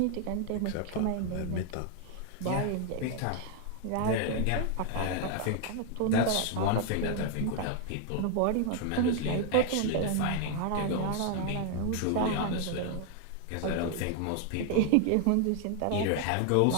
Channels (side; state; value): both; different; correlation 0.00